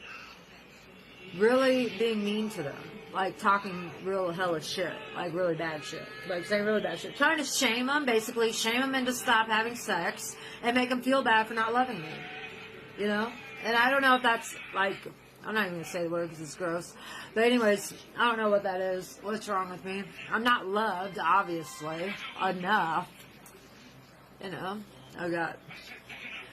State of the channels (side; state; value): both; identical; correlation 1.00